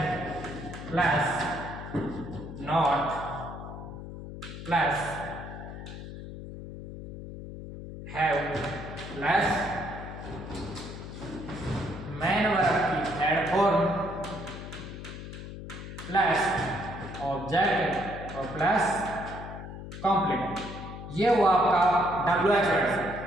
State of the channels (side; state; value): left; noise; hum, 10 dB below the sound